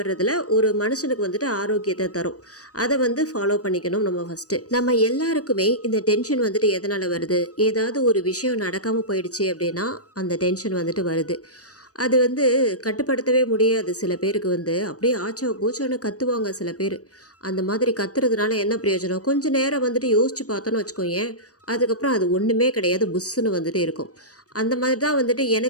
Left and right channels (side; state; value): right; late; 0.66 ms